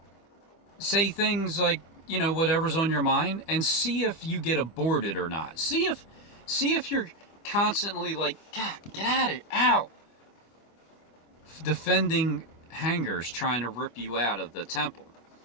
say things like, whatever's on your mind, and see if you get aborted or not. See if you're constantly like, God, get at it, ow, defending hangers trying to rip you out of the temple.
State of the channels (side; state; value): right; late; 25 ms